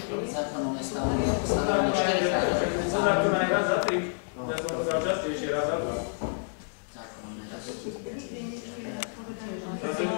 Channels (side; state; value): right; silent; digital silence